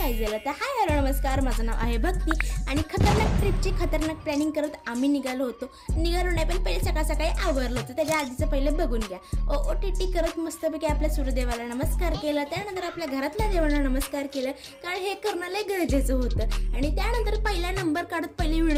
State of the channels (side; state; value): both; identical; correlation 1.00